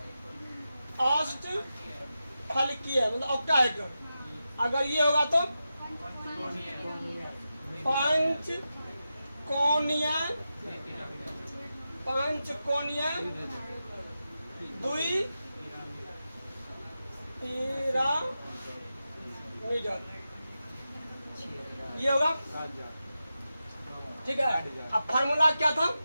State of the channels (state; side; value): inverted; both; correlation -0.91